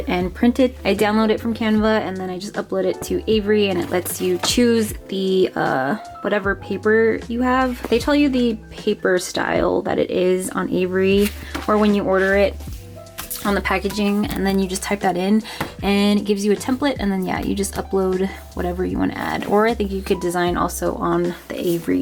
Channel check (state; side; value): identical; both; correlation 1.00